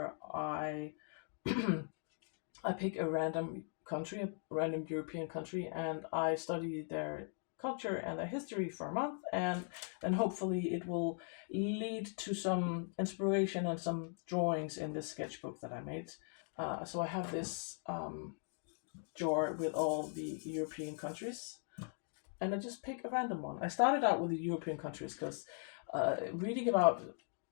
I I pick a random country, a random European country, and I study their culture and their history for a month, and then hopefully it will lead to some inspiration and some drawings in this sketchbook that I made. So I have this jar with all the European countries, and I just pick a random one. I started out with the European countries because reading about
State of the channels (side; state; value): right; silent; 51 dB below the other